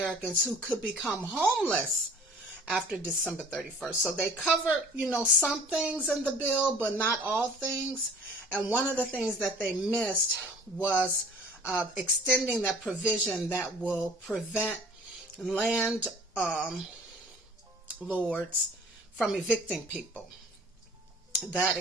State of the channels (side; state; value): both; normal; correlation 0.48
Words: who could become homeless after December 31st. So they cover, some things in the bill, but not all things. And one of the things that they missed was extending that provision that will prevent land lords from evicting people. That